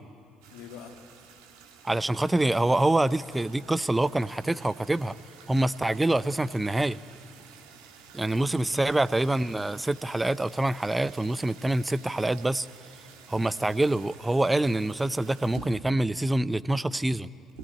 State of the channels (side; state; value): both; normal; correlation 0.98